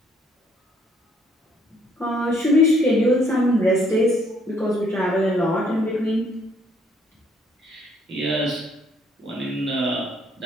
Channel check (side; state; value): both; normal; correlation 0.66